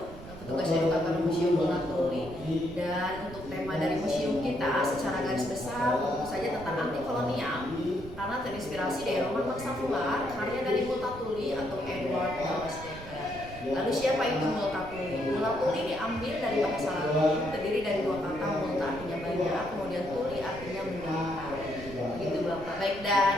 petugas edukator Museum Mulatuli. Dan untuk tema dari museum kita secara garis besar tentu saja tentang anti kolonial, karena terinspirasi dari roman Bangsa Fular, karya dari Multatuli atau Edward Thomas Dekker. Lalu siapa itu Multatuli? Multatuli diambil dari bahasa Latin, terdiri dari dua kata, multa artinya banyak, kemudian tuli artinya menderita. Begitu Bapak. Baik,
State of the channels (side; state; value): right; noise; rumble, 14 dB below the sound